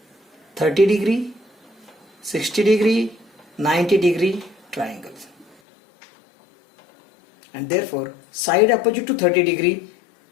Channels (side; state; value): right; drops out; at 5.6 s